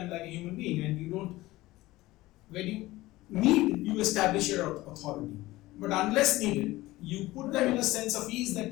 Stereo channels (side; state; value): right; quieter; 18.2 dB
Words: like a human being, and you don't. When you need, you establish your authority. But unless needed, you put them in a sense of ease that